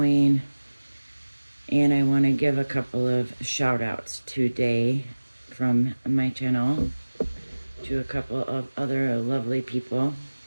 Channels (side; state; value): both; inverted; correlation -1.00